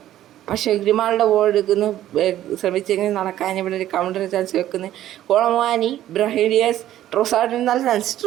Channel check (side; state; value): left; quieter; 12.9 dB